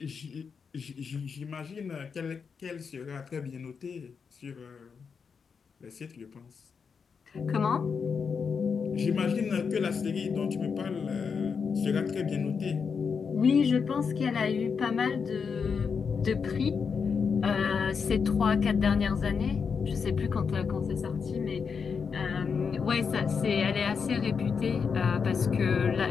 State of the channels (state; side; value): quieter; right; 5.9 dB